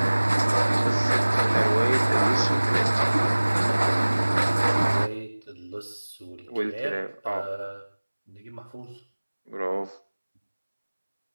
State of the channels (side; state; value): both; inverted; correlation -1.00